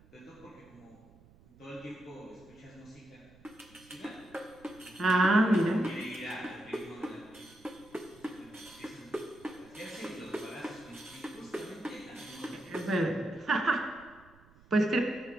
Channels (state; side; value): noise; right; rumble, 25 dB below the sound